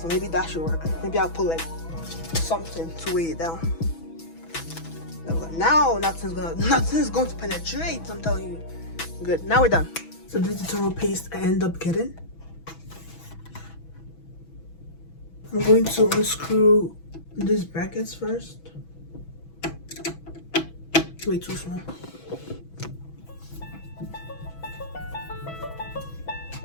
maybe that should work. Maybe I'll put like something to weigh it down. Now nothing's going to penetrate. I'm telling you. Good. Now we're done. So this is the thermal paste I end up getting. I'm going to unscrew these brackets first. Way too small.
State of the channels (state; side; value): late; right; 6.1 ms